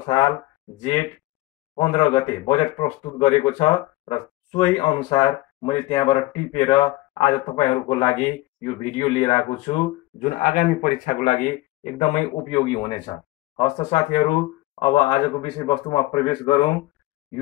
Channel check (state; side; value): quieter; right; 18.8 dB